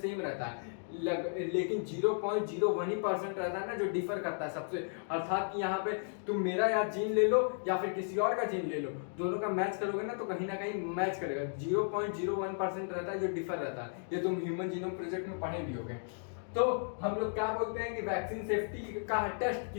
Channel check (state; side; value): silent; right; digital silence